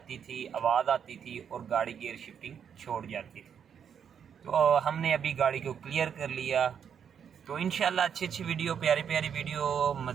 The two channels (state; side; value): quieter; left; 7.8 dB